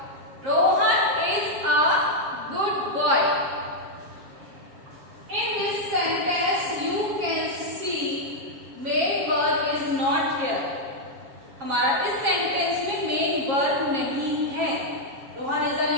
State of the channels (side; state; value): left; late; 7.4 ms